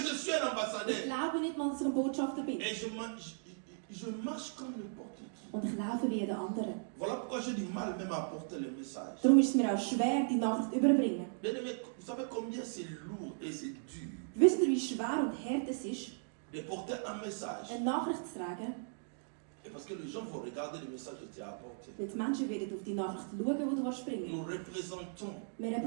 suis un Ich ambassadeur. glaube nicht mal, dass ich ein Botschafter bin. Et je marche comme n'importe qui. Und ich laufe wie jeder andere. Voilà pourquoi j'ai du mal même à porter le message. Darum ist es mir auch schwer, die Nachricht zu überbringen. Bien aimé, vous savez combien c'est lourd et c'est dur Wisst ihr, wie schwer und hart es ist, de porter un message. eine Nachricht zu tragen? Et parce que les gens vont regarder le message que tu as apporté. Weil die Menschen werden auf die Nachricht schauen, die du bringen Nous représentons. Wir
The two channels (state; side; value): silent; left; digital silence